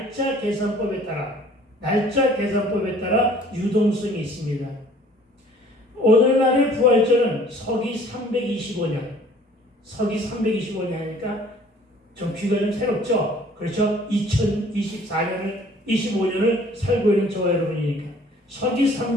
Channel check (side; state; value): both; normal; correlation 0.53